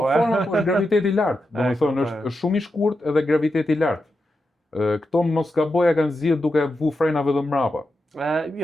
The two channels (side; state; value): both; normal; correlation 0.88